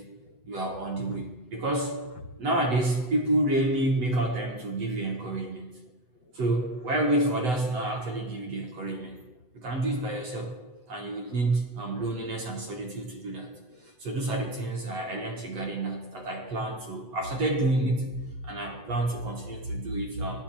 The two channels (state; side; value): late; left; 8.0 ms